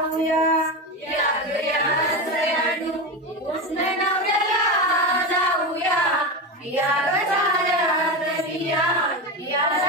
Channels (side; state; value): both; normal; correlation 0.18